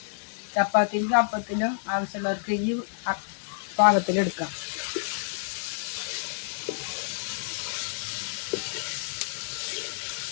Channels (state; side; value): silent; right; digital silence